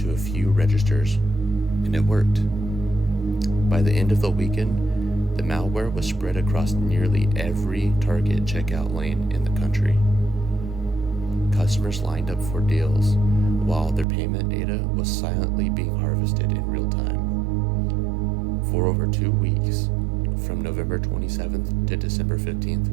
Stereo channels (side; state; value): left; drops out; at 14.1 s